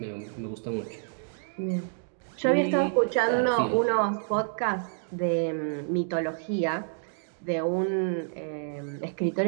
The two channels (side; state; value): left; silent; digital silence